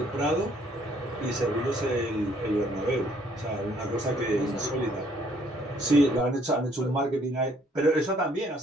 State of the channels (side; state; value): both; normal; correlation 0.64